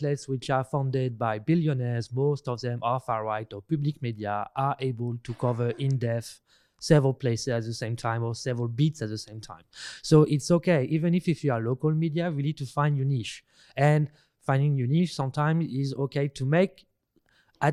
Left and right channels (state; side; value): identical; both; correlation 1.00